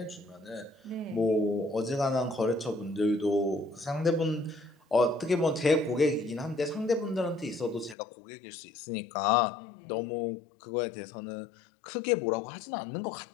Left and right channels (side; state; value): right; drops out; at 8.0 s